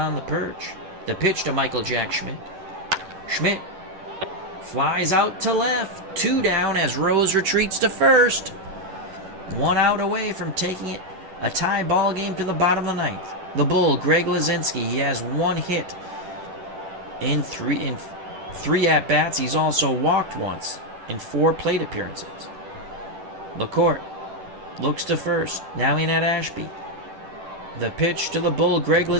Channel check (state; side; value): late; left; 10 ms